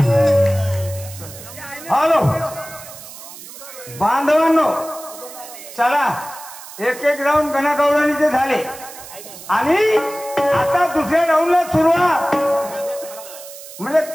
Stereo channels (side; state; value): right; noise; hiss, 15 dB below the sound